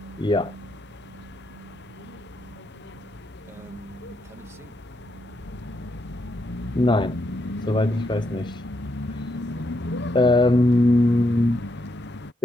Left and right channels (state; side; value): normal; both; correlation 0.79